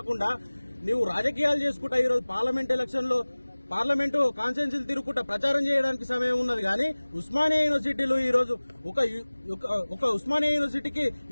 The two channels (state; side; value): inverted; both; correlation -1.00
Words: నీవు రాజకీయాలు చేసుకుంటా ఈరోజు పార్లమెంటు కాన్స్టిట్యున్సీలు తిరుగుకుంటా ప్రచారం చేయడానికి సమయం ఉన్నది. కానీ ఉస్మానియా యూనివర్సిటీలో ఈ రోజు ఒక ఉస్మానియా యూనివర్సిటీకి